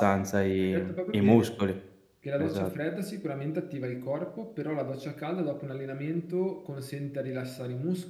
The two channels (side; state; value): both; identical; correlation 1.00